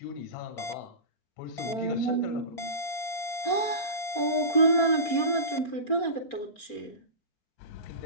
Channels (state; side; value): late; right; 4.3 ms